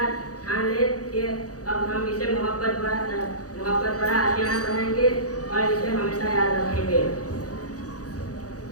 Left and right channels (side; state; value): right; late; 0.67 ms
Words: ठान ले कि अब हम इसे मोहब्बत भरा आशियाना बनाएंगे और इसे हमेशा याद रखेंगे।